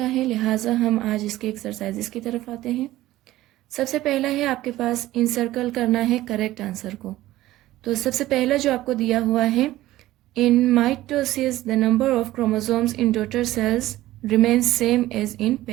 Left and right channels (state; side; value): quieter; left; 15.8 dB